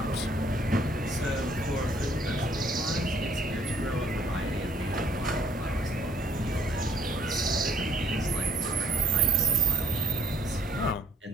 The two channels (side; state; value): both; normal; correlation 0.62